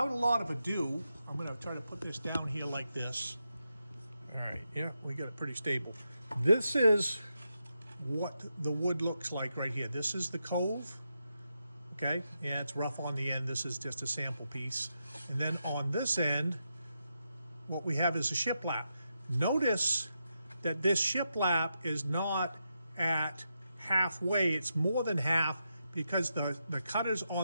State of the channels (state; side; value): inverted; both; correlation -0.85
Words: a lot of ado, I'm going to try to put this down here like this. All right, yeah, we got it pretty stable. This is what the wood looks like right here. This is the cove. Okay, yeah, it's rough on the end. This is just a sample piece. And then on this end, what we have is a shiplap. Notice that this shiplap is not at halfway. It's more than half, because the cutters